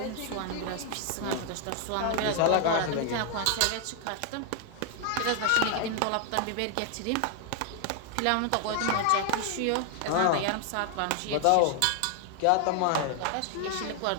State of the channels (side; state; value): both; different; correlation 0.00